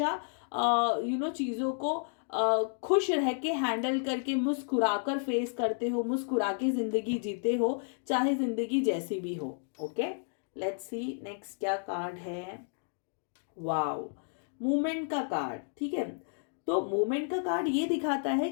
चीज़ों को खुश रह के हैंडल करके मुस्कुराकर फेस करते हो, मुस्कुरा के जिंदगी जीते हो, चाहे जिंदगी जैसी भी हो। ओके, लेट्स सी नेक्स्ट क्या कार्ड है। वाओ, मूवमेंट का कार्ड, ठीक है। तो मूवमेंट का कार्ड ये दिखाता है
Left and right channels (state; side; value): silent; right; 57 dB below the other